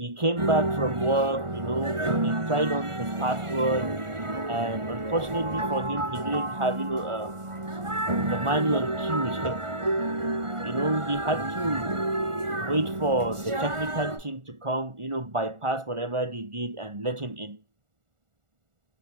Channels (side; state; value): left; late; 1.4 ms